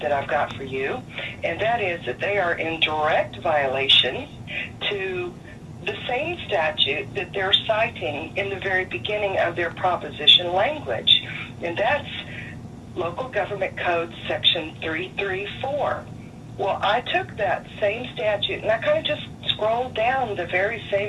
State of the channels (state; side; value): identical; both; correlation 1.00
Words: that I've got for you, and that is that they are in direct violation to the same statute that they're citing in the very beginning of their proposition language, and that's Local Government Code Section 334. Well, I took that same statute, and I kind of just scrolled down the very